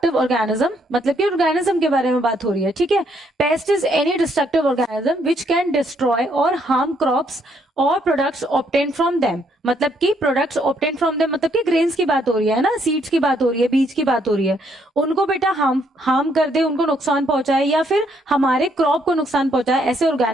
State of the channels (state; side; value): normal; both; correlation 0.71